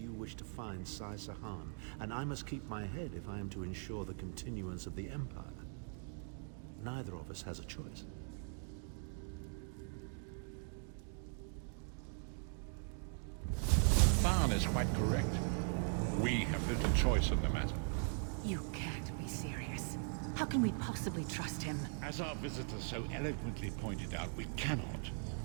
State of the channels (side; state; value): left; silent; 51 dB below the other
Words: wish to find Sai-Sahan, and I must keep my head if I am to ensure the continuance of the Empire. Neither of us has a choice. Tharn is quite correct. We have little choice in the matter. You can't be serious. How can we possibly trust him? As our visitor so eloquently pointed out, we cannot.